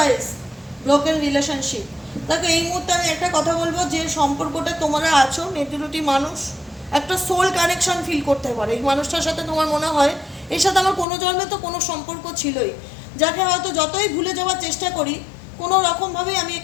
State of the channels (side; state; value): right; drops out; at 11.1 s